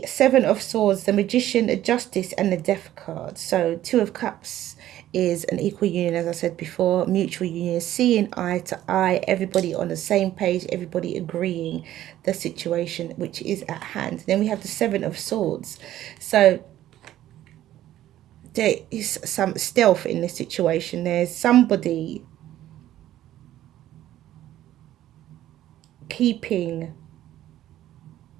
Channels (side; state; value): left; quieter; 13.2 dB